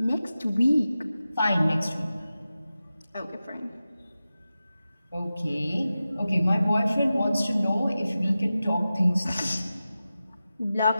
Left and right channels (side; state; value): both; inverted; correlation -0.94